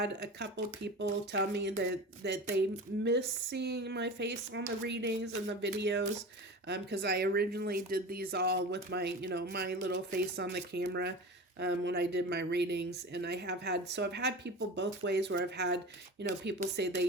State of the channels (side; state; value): both; normal; correlation 0.32